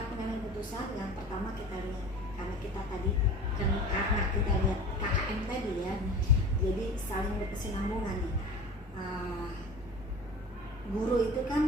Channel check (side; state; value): both; normal; correlation 0.38